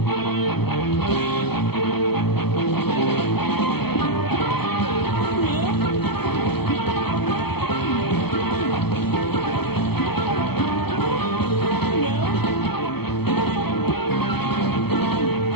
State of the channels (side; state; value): right; late; 0.97 ms